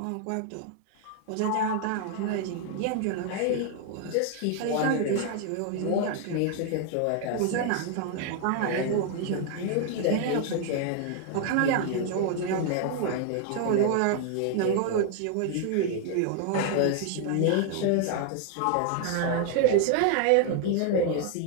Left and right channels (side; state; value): both; different; correlation 0.00